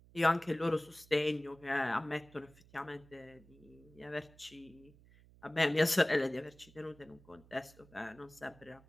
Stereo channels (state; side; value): noise; right; hum, 25 dB below the sound